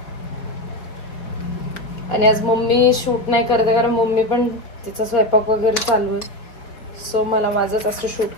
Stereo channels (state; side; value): late; right; 4.5 ms